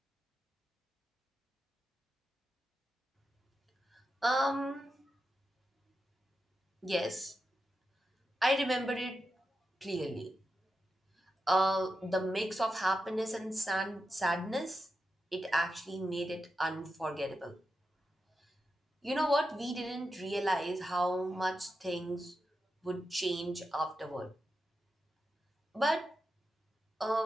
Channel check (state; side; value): normal; both; correlation 0.89